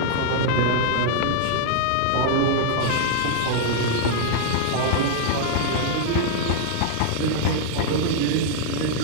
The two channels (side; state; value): both; different; correlation -0.01